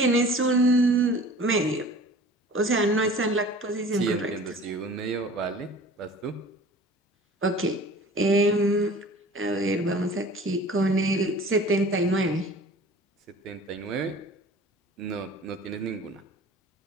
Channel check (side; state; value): both; normal; correlation 0.44